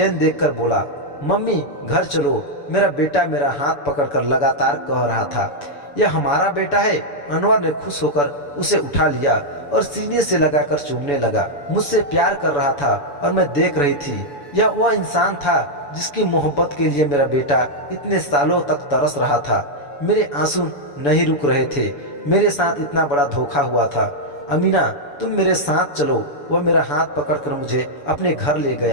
देखकर बोला, मम्मी घर चलो। मेरा बेटा मेरा हाथ पकड़कर लगातार कह रहा था, यह हमारा बेटा है। अनवर ने खुश होकर उसे उठा लिया और सीने से लगाकर चूमने लगा। मुझसे प्यार कर रहा था और मैं देख रही थी। यह वह इंसान था जिसकी मोहब्बत के लिए मेरा बेटा इतने सालों तक तरस रहा था। मेरे आंसू नहीं रुक रहे थे। मेरे साथ इतना बड़ा धोखा हुआ था। अमीना, तुम मेरे साथ चलो। वह मेरा हाथ पकड़कर मुझे अपने घर ले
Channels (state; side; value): late; right; 7.0 ms